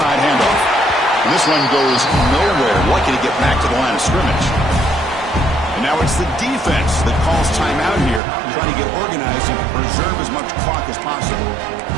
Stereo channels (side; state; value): left; drops out; at 8.2 s